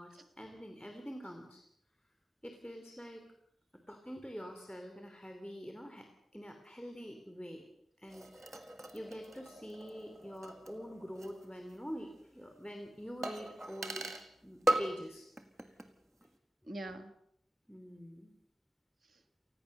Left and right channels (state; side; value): normal; both; correlation 0.94